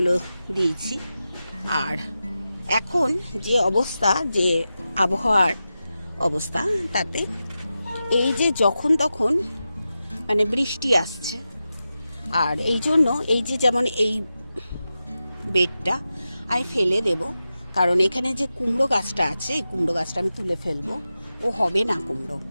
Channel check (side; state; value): both; inverted; correlation -0.92